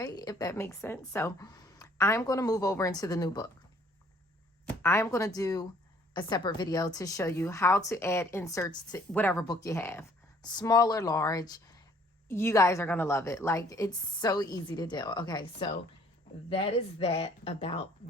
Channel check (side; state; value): both; normal; correlation 0.59